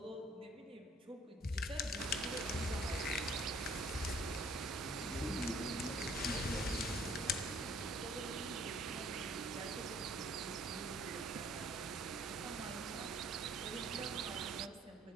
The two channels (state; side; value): normal; both; correlation 0.58